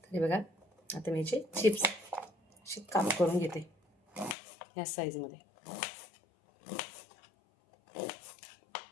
हे बघा आता मी याचे चिप्स असे काप करून घेते या साईजमध्ये.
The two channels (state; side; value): drops out; right; at 4.4 s